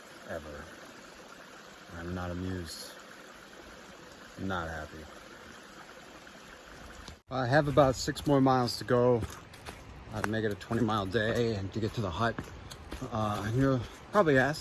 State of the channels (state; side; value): identical; both; correlation 1.00